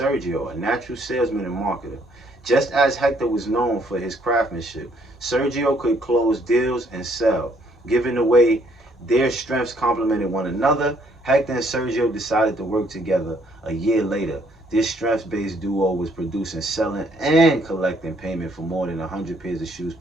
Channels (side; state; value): both; normal; correlation 0.66